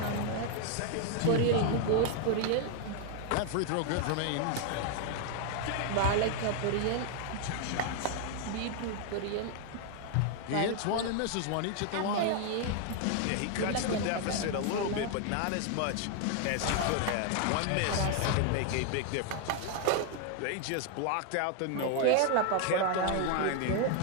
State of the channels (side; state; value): both; different; correlation 0.00